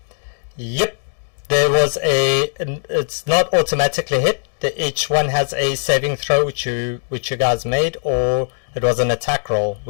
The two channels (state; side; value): silent; right; digital silence